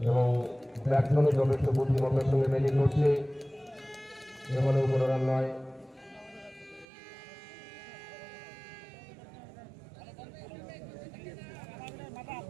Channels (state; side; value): drops out; left; at 6.9 s